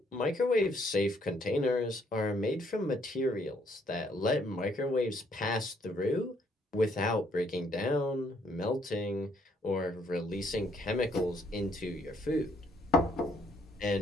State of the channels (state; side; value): normal; both; correlation 0.68